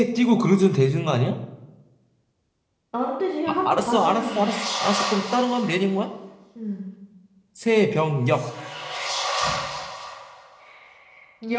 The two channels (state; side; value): identical; both; correlation 1.00